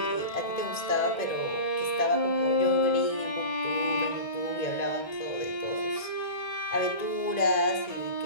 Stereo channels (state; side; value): late; right; 1.9 ms